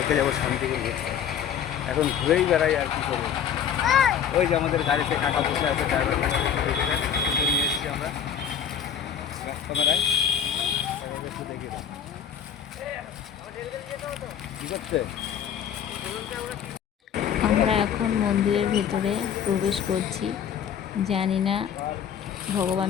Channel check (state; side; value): quieter; right; 8.4 dB